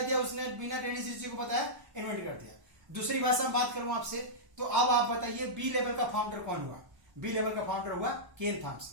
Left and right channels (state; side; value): late; left; 1.1 ms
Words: दिया, उसने बिना डेनिस रिची को बताया इन्वेंट कर दिया। दूसरी भाषा में बात करूं आपसे, तो अब आप बताइए बी लेवल का फाउंडर कौन हुआ। बी लेवल का फाउंडर हुआ केन